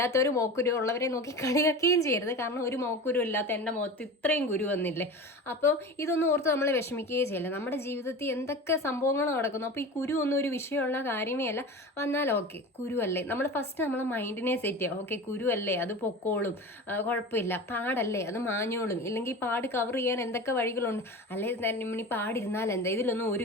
മുഖക്കുരു ഉള്ളവരെ നോക്കി കളിയാക്കുകയും ചെയ്യരുത്. കാരണം ഒരു മുഖക്കുരു ഇല്ലാത്ത എൻ്റെ മുഖത്ത് ഇത്രയും കുരു വന്നില്ലേ. അപ്പോൾ ഇതൊന്നും ഓർത്ത് നമ്മൾ വിഷമിക്കുകയേ ചെയ്യില്ല. നമ്മുടെ ജീവിതത്തിൽ എന്തൊക്കെ സംഭവങ്ങൾ നടക്കുന്നു. അപ്പോൾ ഈ കുരു ഒന്നും ഒരു വിഷയമുള്ള കാര്യമേ അല്ല. വന്നാൽ ഓക്കെ, കുരുവല്ലേ, നമ്മൾ ഫസ്റ്റ് നമ്മളെ മൈൻഡിനെ സെറ്റ് ചെയ്യുക. ഓക്കെ, കുരുവല്ലേ, അത് പൊക്കോളും, കുഴപ്പമില്ല. പാടല്ലേ, അത് മാഞ്ഞോളും. ഇല്ലെങ്കിൽ പാട് കവർ ചെയ്യാൻ എന്തൊക്കെ വഴികളുണ്ട്. അല്ലേ തന്നെ പാടിരുന്നാൽ എന്താ, ഇതിലൊന്നും ഒരു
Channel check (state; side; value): normal; both; correlation 0.32